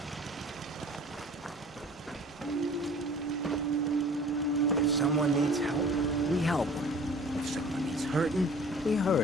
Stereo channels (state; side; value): normal; both; correlation 0.47